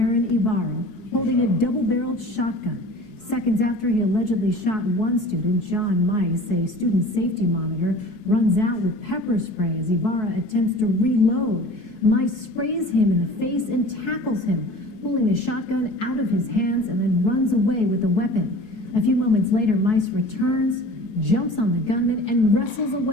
Ibarra, holding a double-barreled shotgun. Seconds after he allegedly shot one student, John Mice, a student safety monitor, runs out with pepper spray as Ibarra attempts to reload. Mice sprays him in the face and tackles him, pulling the shotgun out of his hands and then runs away with the weapon. A few moments later, Mice returns, jumps on the gunman, and wrestles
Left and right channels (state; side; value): late; right; 4.7 ms